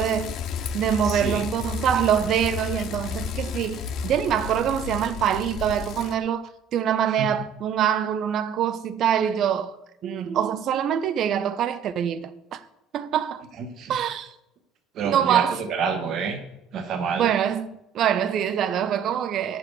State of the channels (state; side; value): quieter; left; 7.3 dB